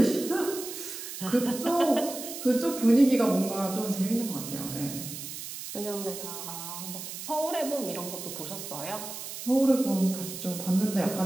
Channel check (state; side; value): noise; right; hiss, 9 dB below the sound